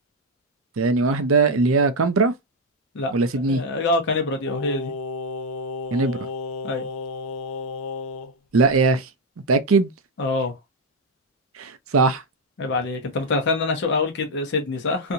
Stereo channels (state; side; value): normal; both; correlation 0.03